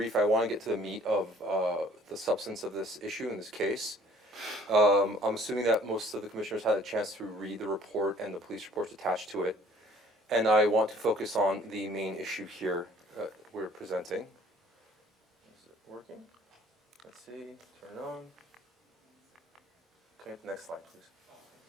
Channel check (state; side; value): normal; both; correlation 0.55